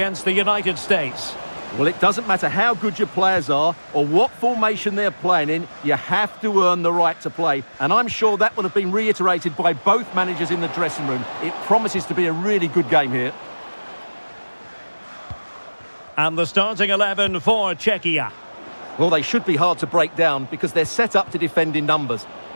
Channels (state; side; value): inverted; both; correlation -1.00